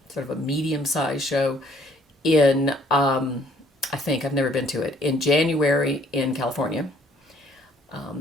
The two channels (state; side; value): normal; both; correlation 0.62